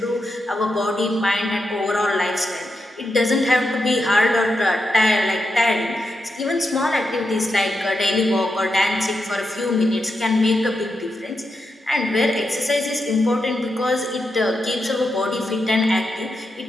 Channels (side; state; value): both; normal; correlation 0.86